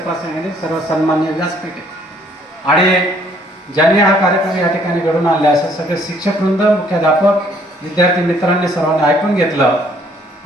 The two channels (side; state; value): both; normal; correlation 0.63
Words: प्रसंगाने सर्व सन्मान्य व्यासपीठ आहे. आणि ज्यांनी हा कार्यक्रम या ठिकाणी घडून आणला, असे सगळे शिक्षक वृंद, मुख्याध्यापक, विद्यार्थी मित्रांनी सर्वांनी ऐकून घेतलं.